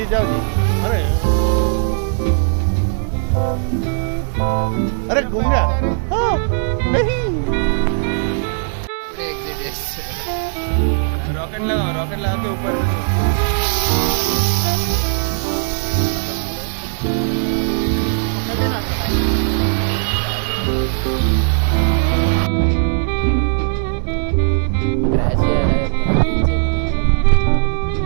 जाओ जी। अरे घूम गया। हाँ, नहीं रॉकेट लगा के ऊपर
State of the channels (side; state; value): left; silent; digital silence